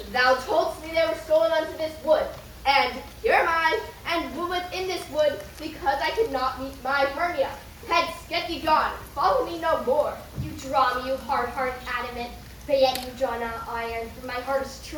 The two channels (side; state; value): both; identical; correlation 1.00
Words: Thou toldst me they were stolen unto this wood, and here am I, and woman in this wood, because I could not meet my Hermia. Hence, get thee gone, follow me no more. You draw me, you hard-hearted adamant, but yet you draw not iron, for my heart is